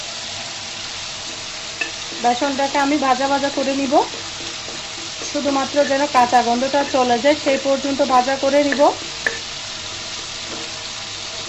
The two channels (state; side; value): identical; both; correlation 1.00